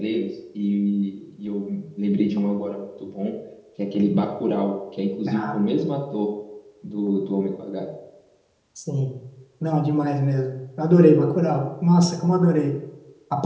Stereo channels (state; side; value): identical; both; correlation 1.00